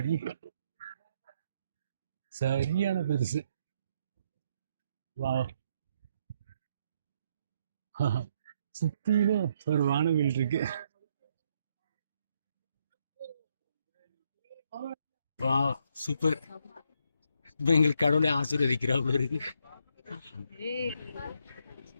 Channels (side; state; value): both; inverted; correlation -0.74